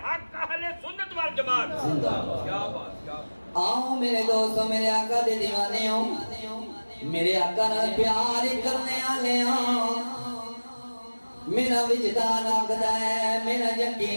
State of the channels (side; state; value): both; inverted; correlation -1.00